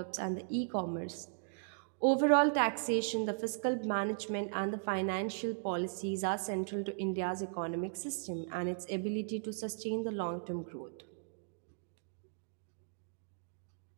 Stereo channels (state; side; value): silent; left; digital silence